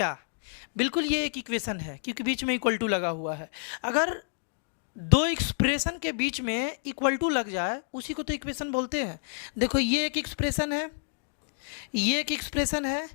बिल्कुल ये एक इक्वेशन है, क्योंकि बीच में = लगा हुआ है। अगर दो एक्सप्रेशन के बीच में = लग जाए उसी को तो इक्वेशन बोलते हैं। देखो ये एक एक्सप्रेशन है, ये एक एक्सप्रेशन है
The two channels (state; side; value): silent; right; digital silence